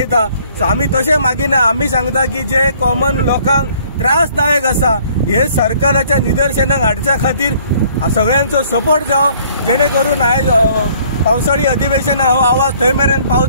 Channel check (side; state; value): both; inverted; correlation -0.59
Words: सो आमी तशें मागिना। आमी सांगता की जे कॉमन लोकांक त्रासदायक आसा हे सरकाराच्या निदर्शनाक हाडच्या खातीर सगळ्यांचो सपोर्ट जावो, जेणे करून आयज पावसाळी अधिवेशना हो आवाज थंय मेरेन